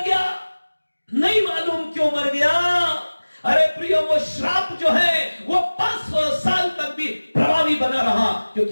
गया? नहीं मालूम क्यों मर गया। अरे प्रियो, वो श्राप जो है वो 500 साल तक भी प्रभावी बना रहा,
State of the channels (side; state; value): both; inverted; correlation -1.00